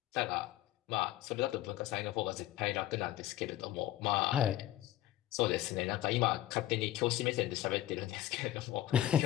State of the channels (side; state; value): right; quieter; 14.2 dB